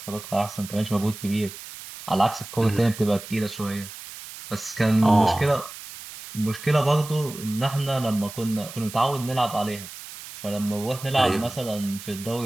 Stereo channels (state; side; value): noise; right; hiss, 13 dB below the sound